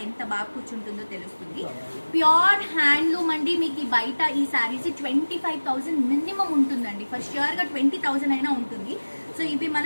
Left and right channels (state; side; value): inverted; both; correlation -1.00